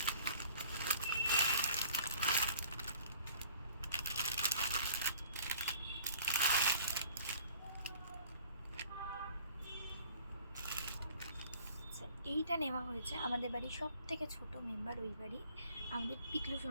এইটা নেওয়া হয়েছে আমাদের বাড়ির সব থেকে ছোট মেম্বার ওই বাড়ি, আমাদের পিকলু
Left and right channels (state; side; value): inverted; both; correlation -0.52